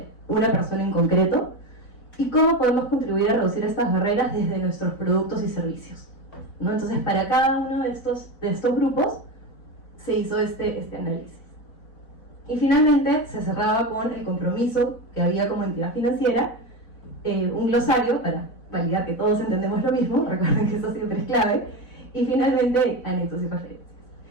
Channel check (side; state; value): right; late; 4.0 ms